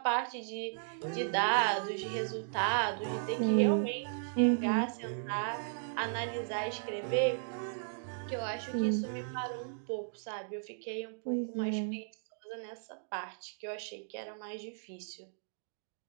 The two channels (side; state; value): left; silent; digital silence